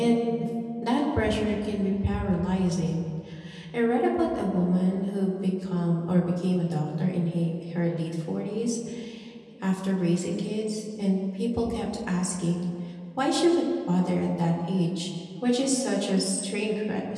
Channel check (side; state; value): both; identical; correlation 1.00